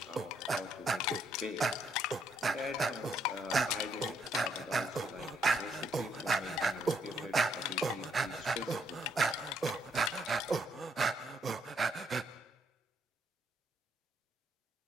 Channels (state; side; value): normal; both; correlation 0.73